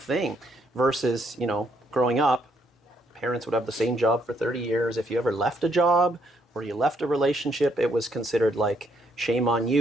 Versus, growing up, parents would have the same job for 30 years. If you ever left a job or you left a relationship, it was considered like, shame on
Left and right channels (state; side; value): normal; both; correlation 0.72